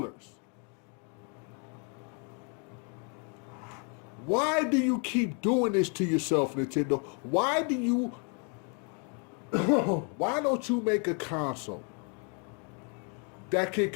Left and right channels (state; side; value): quieter; right; 38.1 dB